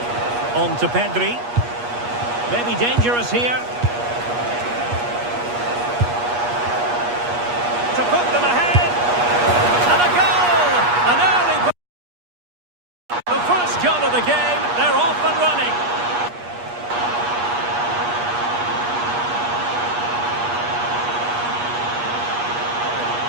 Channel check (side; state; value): left; late; 8.4 ms